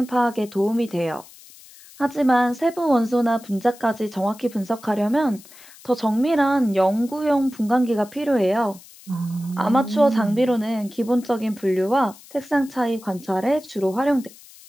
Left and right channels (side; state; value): left; noise; hiss, 22 dB below the sound